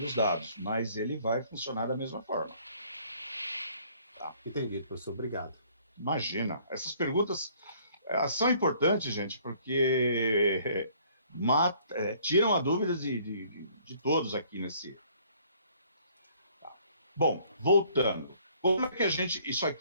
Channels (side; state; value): both; inverted; correlation -0.60